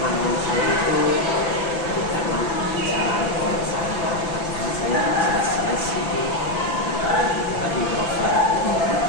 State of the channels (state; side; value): late; right; 5.9 ms